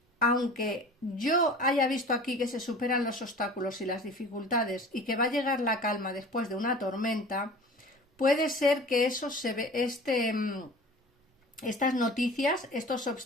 aunque yo haya visto aquí que se superan los obstáculos y las dificultades y que va a llegar la calma después de una tormenta, puede ser que eso estas noticias, estos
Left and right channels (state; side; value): normal; both; correlation 0.41